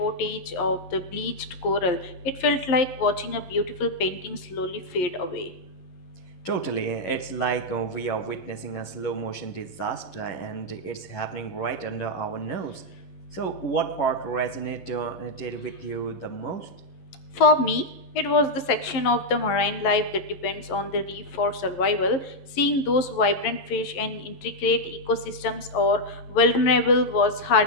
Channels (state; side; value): late; right; 11 ms